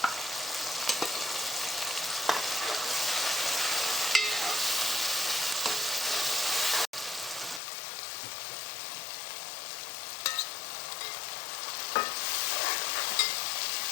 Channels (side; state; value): right; drops out; at 7.6 s